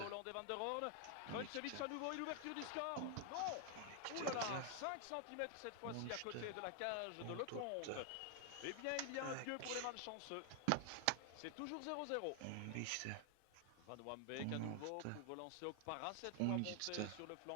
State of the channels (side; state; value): both; different; correlation 0.00